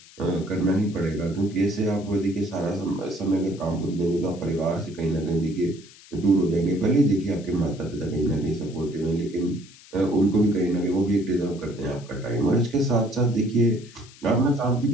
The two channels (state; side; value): noise; left; hiss, 22 dB below the sound